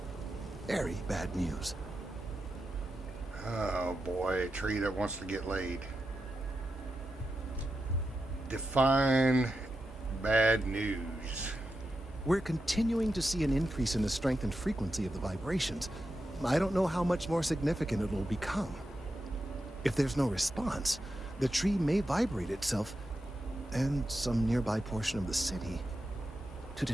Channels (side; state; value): both; normal; correlation 0.89